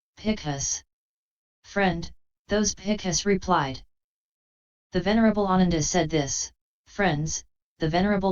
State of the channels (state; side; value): identical; both; correlation 1.00